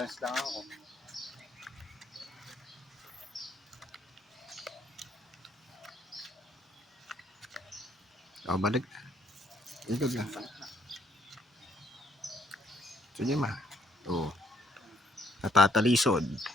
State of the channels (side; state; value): both; normal; correlation 0.69